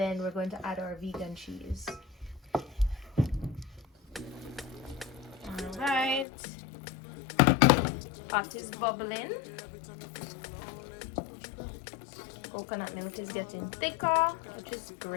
we're going to add our vegan cheese. Alright. Pot is bubbling. Coconut milk is getting thicker, which is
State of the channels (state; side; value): drops out; right; at 6.2 s